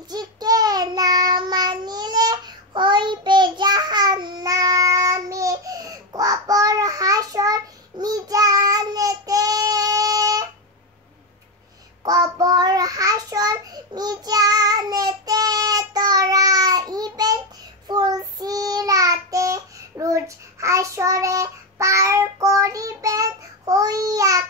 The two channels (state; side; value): normal; both; correlation 0.10